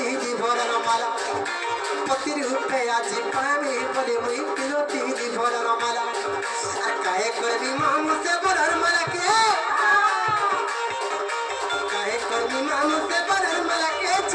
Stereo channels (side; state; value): both; identical; correlation 1.00